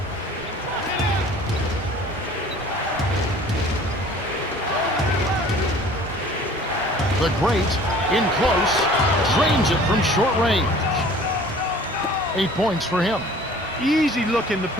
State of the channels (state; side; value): normal; both; correlation 0.49